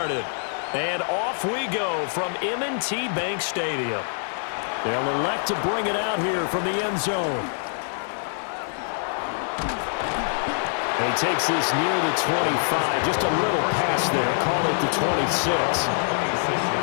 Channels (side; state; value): right; silent; digital silence